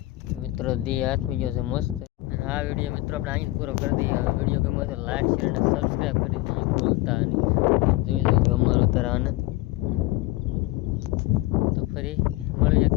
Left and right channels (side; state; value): right; quieter; 18.9 dB